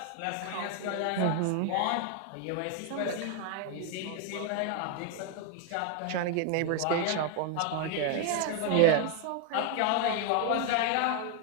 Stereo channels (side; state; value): both; different; correlation 0.01